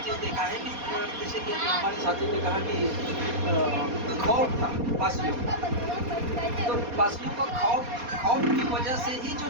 चीज़ देखा है कि जैसे कि हमारे साथी ने कहा कि खौफ था पासियों, तो पासियों का खौफ की वजह से ही जो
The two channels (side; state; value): left; late; 4.2 ms